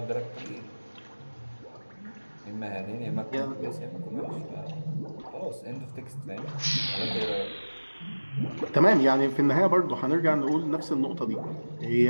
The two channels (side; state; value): both; inverted; correlation -1.00